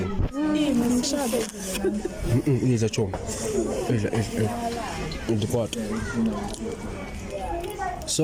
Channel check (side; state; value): both; identical; correlation 1.00